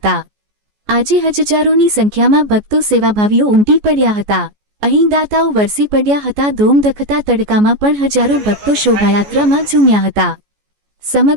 આજે હજારોની સંખ્યામાં ભક્તો સેવાભાવીઓ ઉમટી પડ્યા હતા। અહીં દાતાઓ વરસી પડ્યા હતા। ધોમધખતા તડકામાં પણ હજારો ભક્તો શોભાયાત્રામાં ઝૂમ્યા હતા।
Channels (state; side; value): late; left; 14 ms